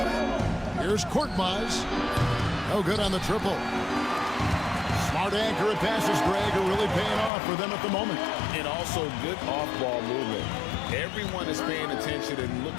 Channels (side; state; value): right; drops out; at 7.3 s